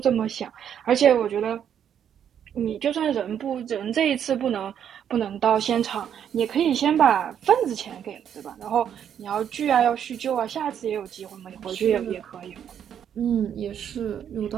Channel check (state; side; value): quieter; left; 9.0 dB